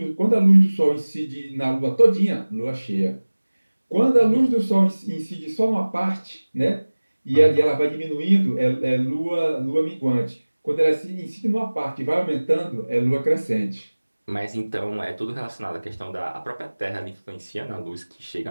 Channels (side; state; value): both; inverted; correlation -1.00